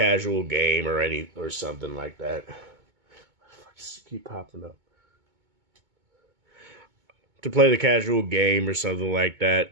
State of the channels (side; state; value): left; late; 2.2 ms